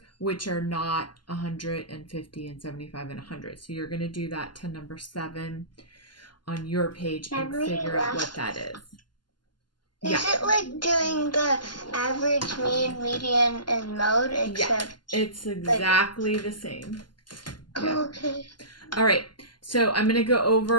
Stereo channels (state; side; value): late; right; 0.71 ms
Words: which are not 150 and 75 and 100. So you're going to do that to number 7 on your page and figure out what that is. Is it like doing the average, mean, median, and mode? Except it's exactly the same. Yeah. Okay. All right. So I'm going to go